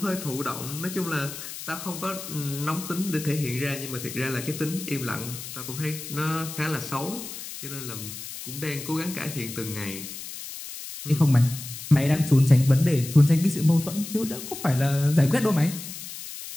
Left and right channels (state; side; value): noise; left; hiss, 10 dB below the sound